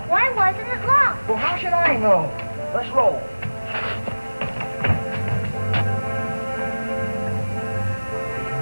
Why wasn't it locked? Well, how should I know? Let's roll.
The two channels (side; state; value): both; inverted; correlation -1.00